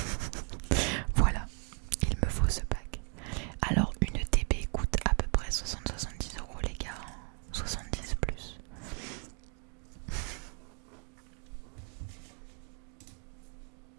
Voilà, il me faut ce pack. Alors, une TB coûte à peu près 60-70 € les gars. 70 plus.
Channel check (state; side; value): quieter; left; 38.3 dB